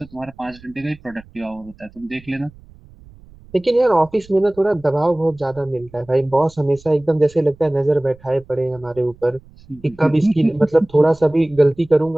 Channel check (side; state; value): right; noise; rumble, 24 dB below the sound